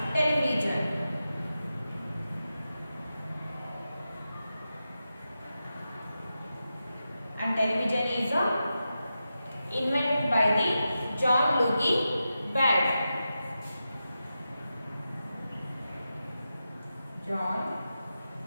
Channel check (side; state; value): both; inverted; correlation -0.90